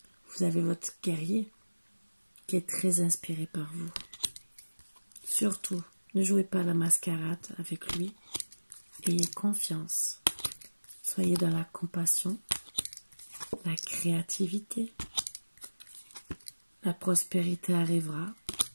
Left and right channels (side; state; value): both; inverted; correlation -1.00